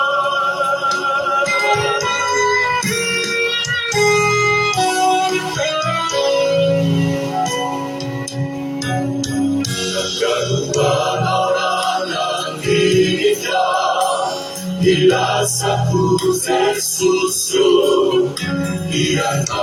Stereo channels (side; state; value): both; identical; correlation 1.00